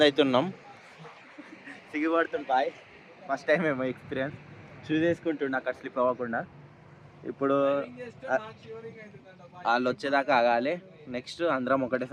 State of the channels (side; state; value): both; identical; correlation 1.00